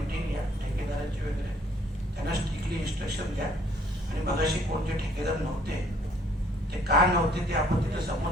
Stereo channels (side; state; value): both; normal; correlation 0.61